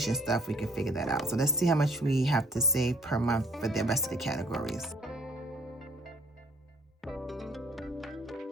stuff, we can figure that out. So let's see how much we have to save per month for the rest of the categories.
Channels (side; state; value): both; normal; correlation 0.59